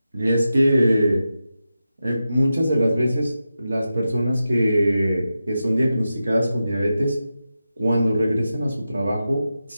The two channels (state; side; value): inverted; both; correlation -0.91